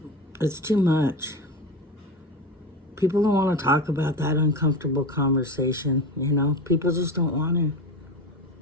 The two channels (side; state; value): both; normal; correlation 0.26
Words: too much. People don't want to talk about that uncomfortable conversation, you know? People just don't want to.